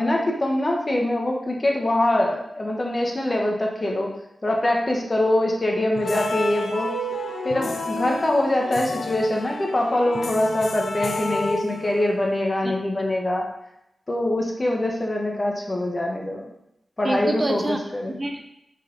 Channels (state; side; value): normal; both; correlation 0.94